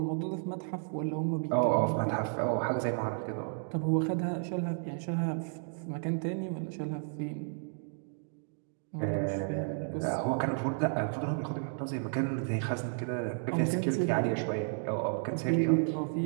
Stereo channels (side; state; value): left; silent; 56 dB below the other